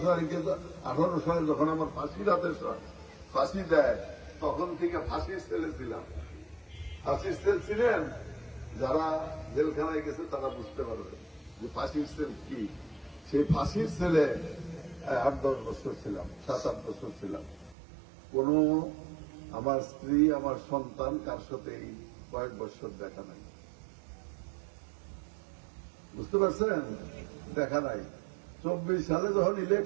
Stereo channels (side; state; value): left; drops out; at 17.8 s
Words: সালে যখন আমার ফাঁসি দেয়, তখন থেকে ফাঁসির সেলে ছিলাম। ফাঁসির সেল ছিলেন যারা জেলখানায় গেছে তারা বুঝতে পারবে যে ফাঁসির সেল কি। সেই ফাঁসির সেলে 8-10 বছর ছিলাম, 7-8 বছর ছিলাম। কোন আমার স্ত্রী আমার সন্তান কার সাথে এই কয়েক বছর দেখা নাই, বুঝতে পারছেন, দেখা নাই। 24 সালে যখন